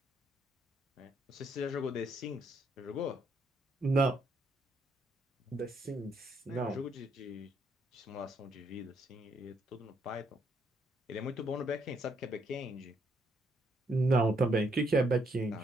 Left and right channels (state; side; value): normal; both; correlation 0.73